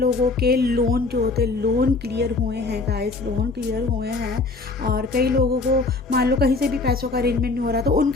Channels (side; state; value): right; quieter; 3.7 dB